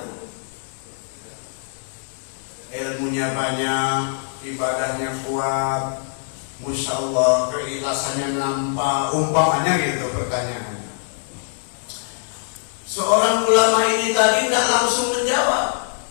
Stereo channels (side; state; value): right; silent; 64 dB below the other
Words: Ilmunya banyak, ibadahnya kuat, Masya Allah, keikhlasannya nampak, umpamanya gitu pertanyaannya. Seorang ulama ini tadi tidak langsung menjawab,